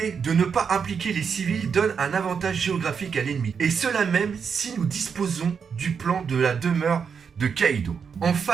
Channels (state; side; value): quieter; left; 6.4 dB